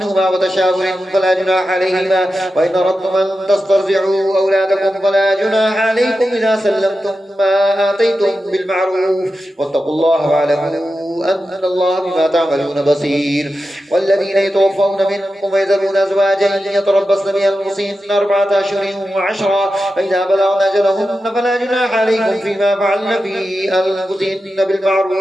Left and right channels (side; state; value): both; normal; correlation 0.91